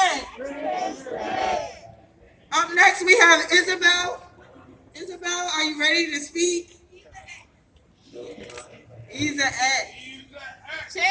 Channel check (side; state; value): both; identical; correlation 1.00